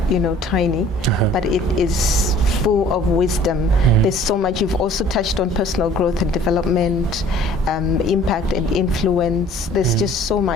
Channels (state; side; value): normal; both; correlation 0.52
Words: you know, tiny, but it is full of wisdom. There's so much. You've also touched on personal growth and development, impact and influence. There's just so